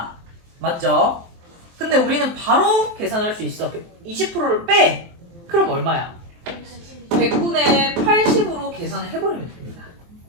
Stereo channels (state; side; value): late; left; 23 ms